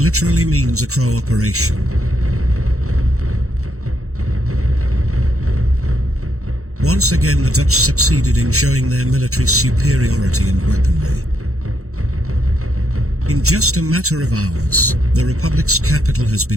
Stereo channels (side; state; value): left; late; 0.64 ms